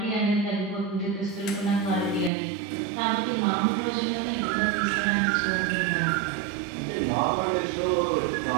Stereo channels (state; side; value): drops out; left; at 2.3 s